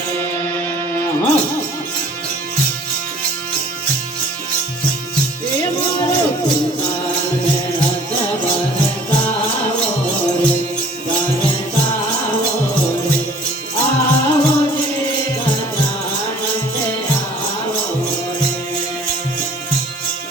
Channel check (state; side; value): normal; both; correlation 0.52